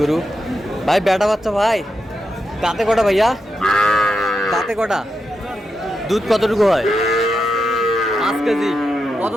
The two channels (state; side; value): normal; both; correlation 0.87